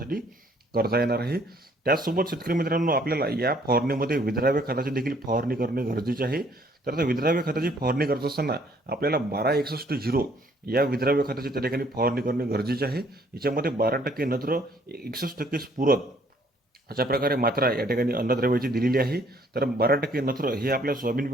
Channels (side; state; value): both; normal; correlation 0.63